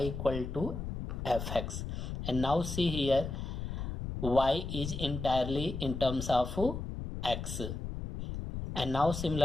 equal to fx. And now see here, y is entirely in terms of x. And now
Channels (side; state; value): left; noise; rumble, 5 dB below the sound